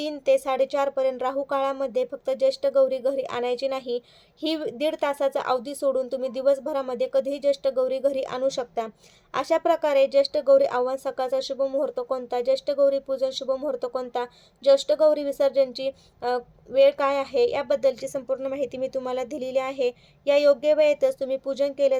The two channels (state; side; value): identical; both; correlation 1.00